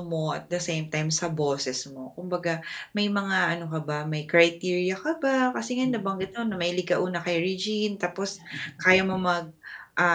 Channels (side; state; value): both; identical; correlation 1.00